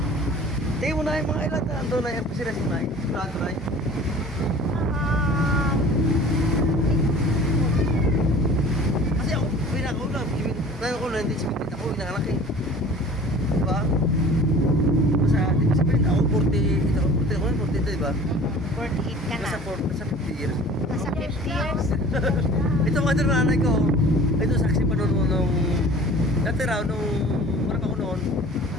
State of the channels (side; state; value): both; normal; correlation 0.45